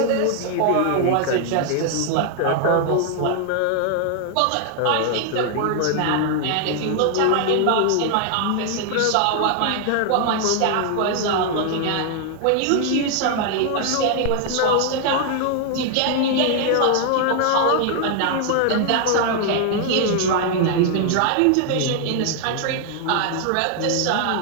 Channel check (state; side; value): different; both; correlation 0.00